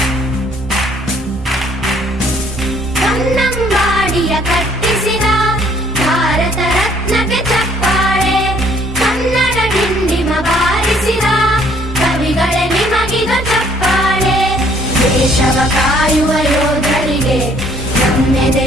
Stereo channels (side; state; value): both; normal; correlation 0.62